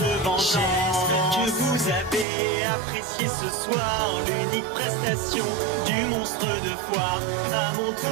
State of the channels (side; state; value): left; drops out; at 2.2 s